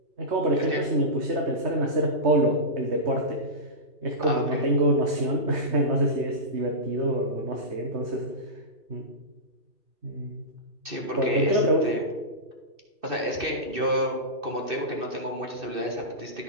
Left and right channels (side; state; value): left; late; 2.6 ms